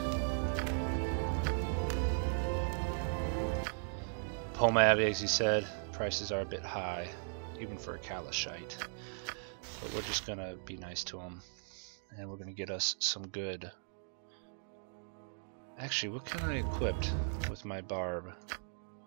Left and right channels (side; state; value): left; silent; digital silence